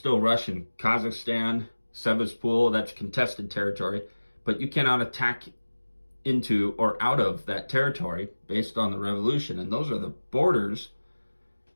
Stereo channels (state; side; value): inverted; both; correlation -1.00